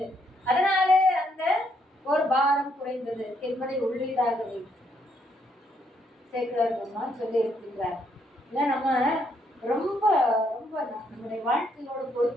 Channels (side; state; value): both; normal; correlation 0.73